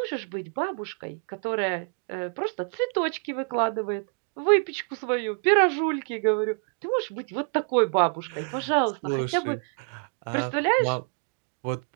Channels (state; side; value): quieter; left; 36.7 dB